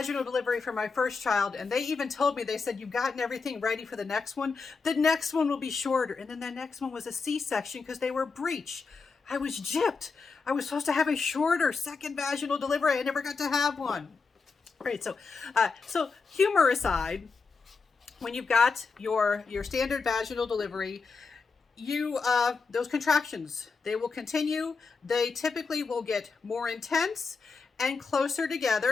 delivery for my first child, and they even told me, they said, you've gotten everything ready for the next one. The next one will be shorter. And then the next one was a C-section because they were breech. I was gypped. I was supposed to have a shorter second vaginal delivery. I never got to have one. Right, so humor aside, when you've got your standard vaginal delivery, those contractions, they will continue. They typically will get more intense and closer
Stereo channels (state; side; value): quieter; right; 4.7 dB